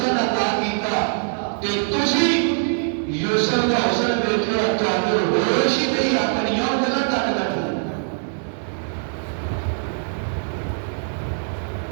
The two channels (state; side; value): silent; left; digital silence